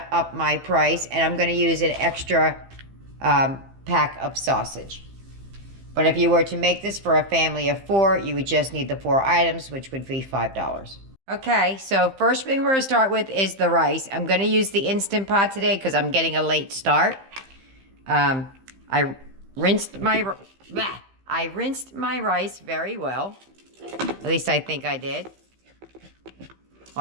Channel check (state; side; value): late; left; 15 ms